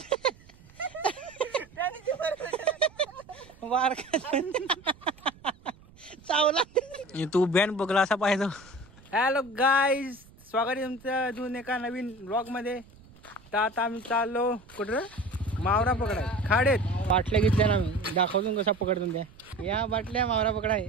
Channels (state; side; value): noise; right; rumble, 25 dB below the sound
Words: वारका चावला तू बॅन बघला असा पाहिजे. हॅलो गाईज, स्वागत आहे तुमचं अजून एका नवीन ब्लॉग मध्ये. तर आता आम्ही चाललो कुठं मावरा पकडाय. खाडेत बाटल्या घेतल्या ना, मी दाखवतो कसा पकडतो त्या. या बाटल्या मावरा पकडाय.